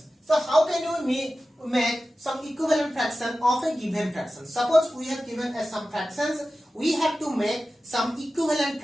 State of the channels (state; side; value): normal; both; correlation 0.95